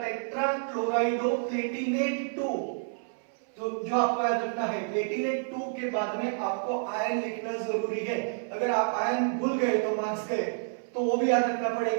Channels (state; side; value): silent; left; 58 dB below the other